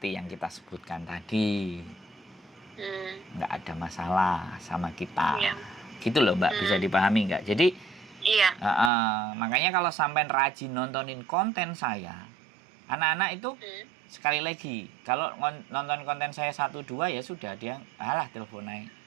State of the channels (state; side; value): drops out; left; at 8.9 s